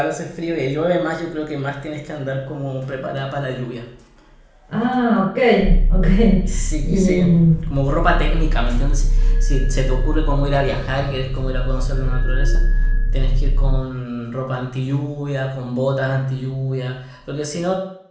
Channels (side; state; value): both; identical; correlation 1.00